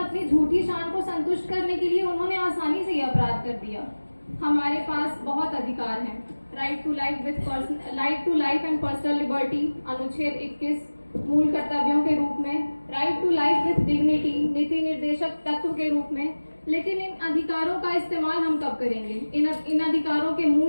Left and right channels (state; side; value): inverted; both; correlation -1.00